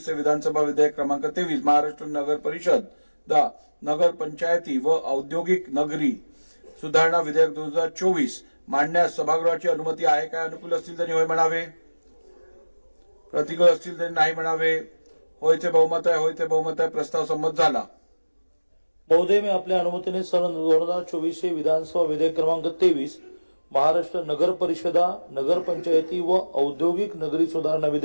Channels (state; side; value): inverted; both; correlation -1.00